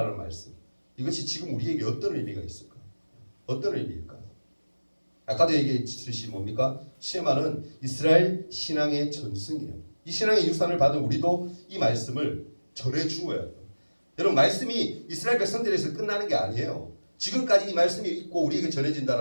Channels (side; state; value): both; inverted; correlation -1.00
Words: 말씀, 이것이 지금 우리에게 어떤 의미가 있을까? 어떤 의미일까? 아까도 얘기했듯이 뭡니까? 쉐마는 이스라엘 신앙의 전승이에요. 이 신앙의 유산을 받은 우리도 이 말씀을 전해주어야 돼요. 여러분 말씀이 이스라엘 백성들에서 끝나는 게 아니에요. 지금까지 이 말씀이 있고 우리에게